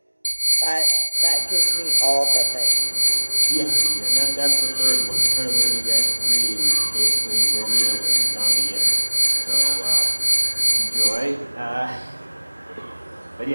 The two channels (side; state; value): both; inverted; correlation -1.00